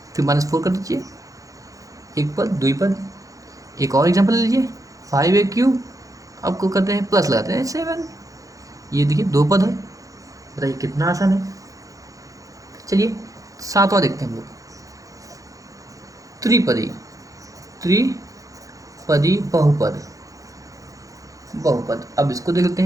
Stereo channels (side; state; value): left; late; 0.16 ms